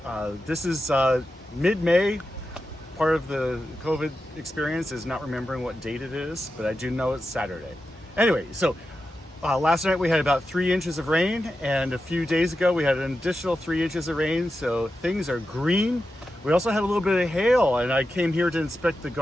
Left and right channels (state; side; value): normal; both; correlation 0.90